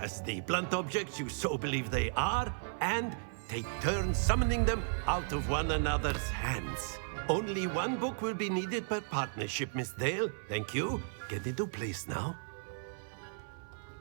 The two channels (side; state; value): left; silent; 55 dB below the other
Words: the blunt objects you so believe they are, and take turns summoning them out of one another's hands. Only one book will be needed per partnership, Miss Dale. Thank you. Get into place now.